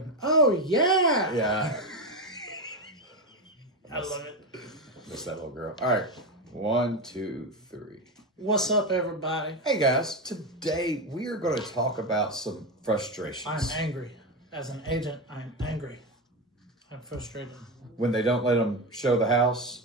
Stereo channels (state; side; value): normal; both; correlation 0.14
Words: oh yeah. Yeah. I love it. Miss that little girl. All right. 1, 2, 3. What's up, everybody? Hey guys, today we are going to talk about some frustrations. I'm angry. As an agent, I'm angry. I'm frustrated. When they don't let them show the